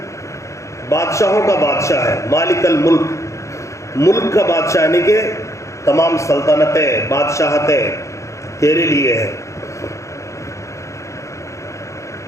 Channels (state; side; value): late; right; 0.15 ms